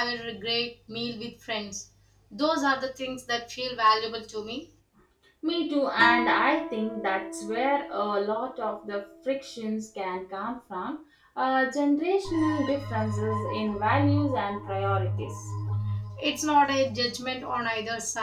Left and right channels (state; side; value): identical; both; correlation 1.00